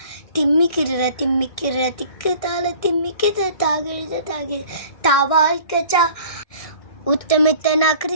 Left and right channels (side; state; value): right; late; 1.6 ms